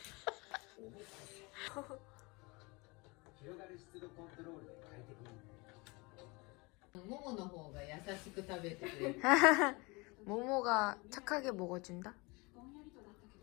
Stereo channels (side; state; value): right; quieter; 26.4 dB